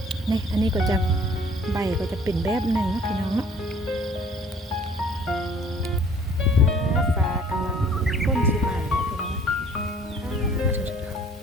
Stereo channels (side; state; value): both; normal; correlation 0.54